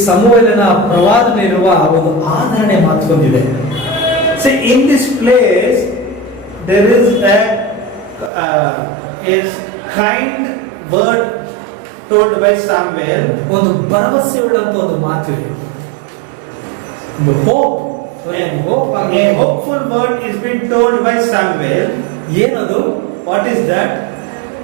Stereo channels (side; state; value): left; drops out; at 8.3 s